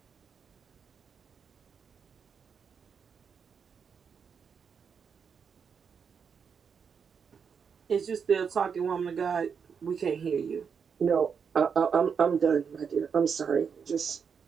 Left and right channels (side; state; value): left; quieter; 6.5 dB